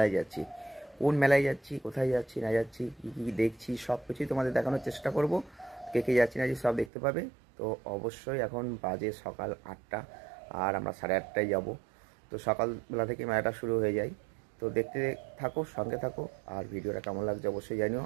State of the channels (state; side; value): drops out; left; at 6.9 s